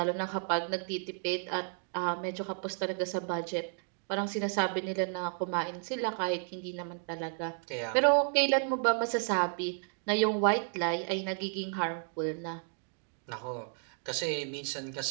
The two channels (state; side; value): silent; left; 56 dB below the other